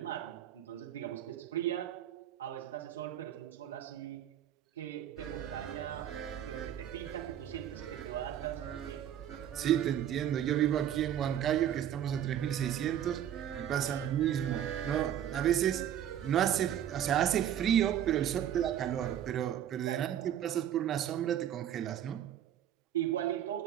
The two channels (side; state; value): left; quieter; 10.5 dB